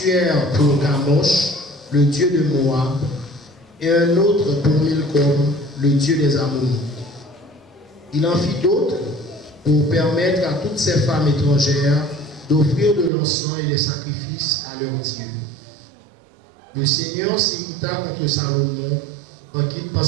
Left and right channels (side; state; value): left; drops out; at 13.1 s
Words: pour Kamosh, le dieu de Moab, et un autre pour Milcom, le dieu des Ammonites. Il en fit d'autres pour permettre à toutes ces femmes étrangères d'offrir de l'encens et des sacrifices à leurs dieux. Le Seigneur s'irrita contre Salomon